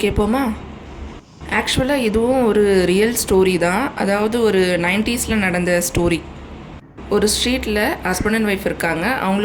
கேட்போமா? ஆக்சுவலாக இதுவும் ஒரு ரியல் ஸ்டோரி தான். அதாவது ஒரு 90s நடந்த ஸ்டோரி. ஒரு ஸ்ட்ரீட்டில் ஹஸ்பண்ட் அண்ட் ஒய்ஃப் இருக்காங்க.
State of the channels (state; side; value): identical; both; correlation 1.00